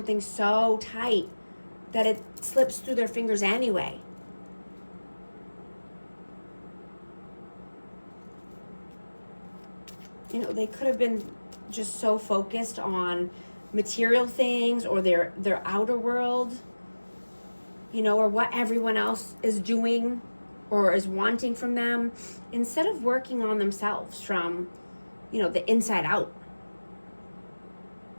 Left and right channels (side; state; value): both; inverted; correlation -1.00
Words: so tight that it slips through their fingers anyway. You know, they could have been just so focused on material things or their outer world, you know, or what everyone else is doing or is wanting from them, instead of working on themselves from, you know, the inside out.